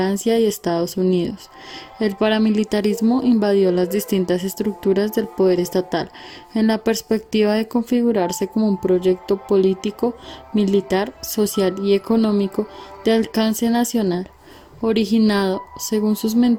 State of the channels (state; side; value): identical; both; correlation 1.00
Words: y Estados Unidos. El paramilitarismo invadió las distintas estructuras del poder estatal en la perspectiva de configurarse como un proyecto político, militar, social y económico de alcance nacional, originado, según sus